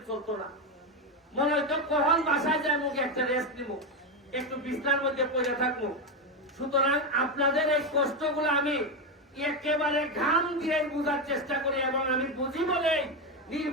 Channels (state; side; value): normal; both; correlation 0.11